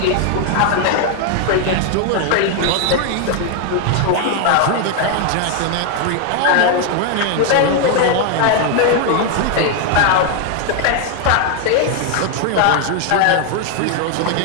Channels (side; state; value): both; different; correlation 0.01